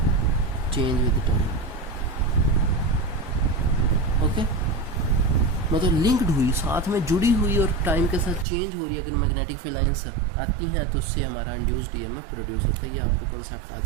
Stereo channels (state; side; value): drops out; left; at 8.5 s